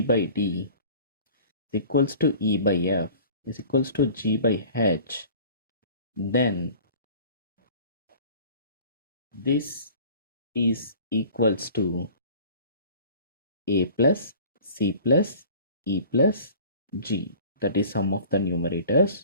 D is equals to E by F is equals to G by H, then this is equals to A plus C plus E plus G, that is sum of the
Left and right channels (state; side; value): inverted; both; correlation -0.46